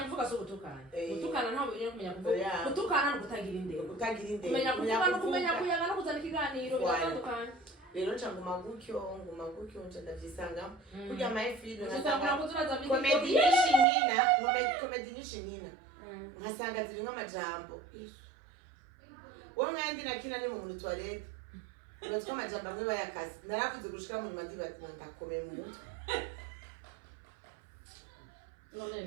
kuvuga so gutukana. Gutukana ntabwo uri kumenya kuvuga. Gutukana no kutagira indero. Kutagira indero. Kumenya kuvuga no kumenya kuyaga no kuzana ikiganiro bitandukanye. Rero nguma gutyo nje ndavyisanga. Kurya my film nasanga kuzuraza comedy nyinshi nkasanga ziri nk'amajambo. Wowe mwandi nakina ni mu muri toilette. Uratwa amajambo amwe bayakazi. Narakuze gushika mu nyuma ndibati ndakomeye mu mutwe. None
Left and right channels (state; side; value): drops out; left; at 13.9 s